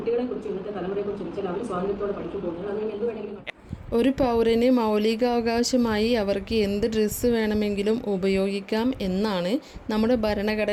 കുറിച്ച് ഇന്നത്തെ തലമുറയെ കുറിച്ച് ചിന്തിച്ചാൽ അവർ സ്വാതന്ത്ര്യത്തോടെ പഠിച്ചു പോകുന്നത്. അത് എന്ത് വേണമെങ്കിലും ഒരു പൗരന് മൗലികാവകാശമായി അവർക്ക് എന്ത് ഡ്രസ്സ് വേണമെങ്കിലും ഉപയോഗിക്കാം എന്നാണ് നമ്മുടെ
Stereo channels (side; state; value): both; identical; correlation 1.00